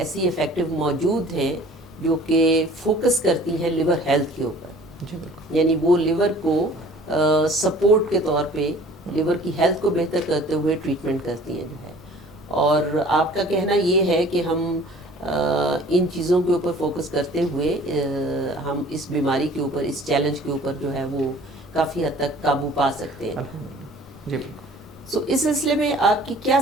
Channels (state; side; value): normal; both; correlation 0.50